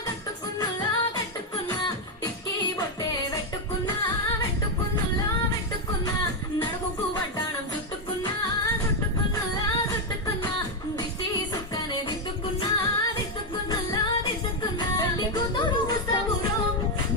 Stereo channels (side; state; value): both; normal; correlation 0.04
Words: కట్టుకున్నులా కట్టుకున్నా టిక్కీ బొట్టే పెట్టుకున్నా పెట్టుకున్నులా పెట్టుకున్నా నడుముకు వడ్డాణం చుట్టుకున్నా చుట్టుకున్నులా చుట్టుకున్నా దిష్టి సుక్కనే దిద్దుకున్నా దిద్దుకున్నులా దిద్దుకున్నా పెళ్లి కూతురు వస్తావురో